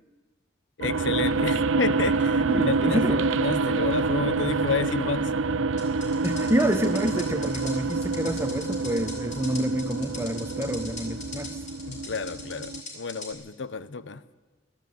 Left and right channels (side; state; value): both; normal; correlation 0.26